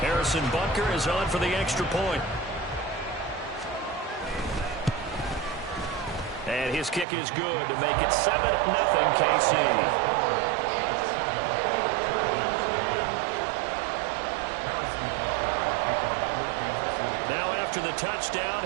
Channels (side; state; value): left; drops out; at 7.1 s